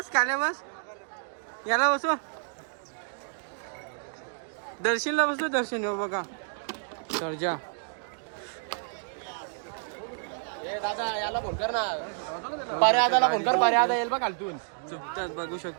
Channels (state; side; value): silent; left; digital silence